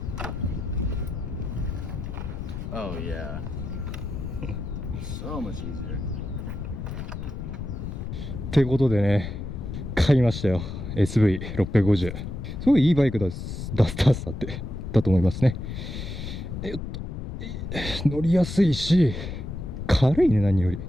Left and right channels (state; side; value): noise; left; rumble, 6 dB below the sound